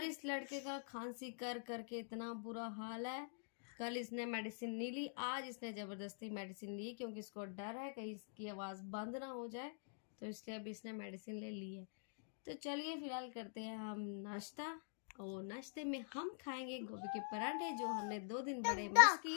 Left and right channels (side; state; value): right; silent; digital silence